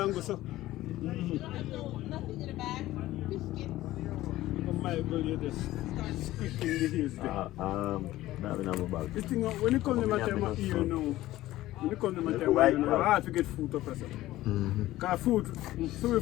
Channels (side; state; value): right; quieter; 15.9 dB